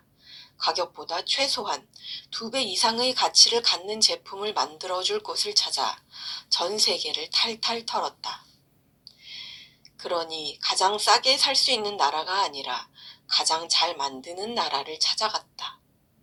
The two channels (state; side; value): identical; both; correlation 1.00